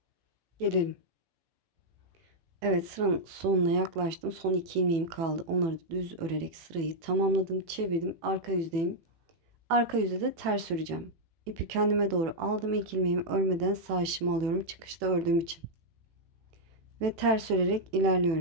gelelim. Evet, sıranın sonuna yaklaştım. Son 2 ilmeğim kaldı. Onları da düz örerek sırayı tamamladım. Çevirdim. Arka yüzdeyim. Arka yüzde de ters öreceğim. İpi kendime doğru aldım. İlk ilmeğimi örmeden sağ işimi alıyorum. Çıkışta ördüğüm için. Ve ters örerek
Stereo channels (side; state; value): left; late; 18 ms